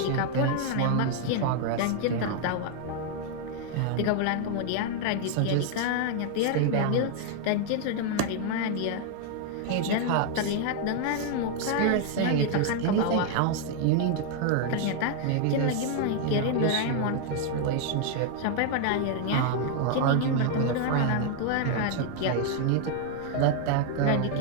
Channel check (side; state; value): both; different; correlation 0.00